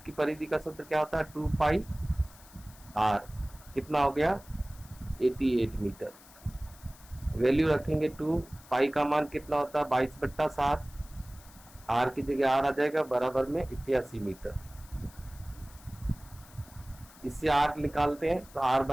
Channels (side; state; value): left; noise; hiss, 22 dB below the sound